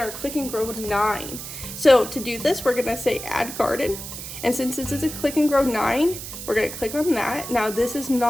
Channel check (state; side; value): noise; right; hiss, 9 dB below the sound